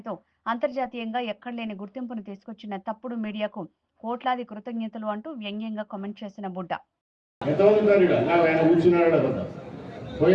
అంతర్జాతీయంగా ఎక్కడలేని గుర్తింపును తీసుకొచ్చిన తప్పుడు మీడియాకు కోట్లాది కృతజ్ఞతలు అంటూ వ్యంగ్యంగా కామెంట్ చేసిన బుడ్డ.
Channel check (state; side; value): identical; both; correlation 1.00